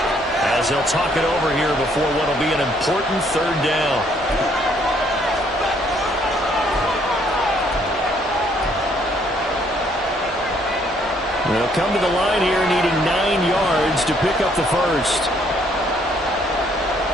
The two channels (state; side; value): normal; both; correlation 0.66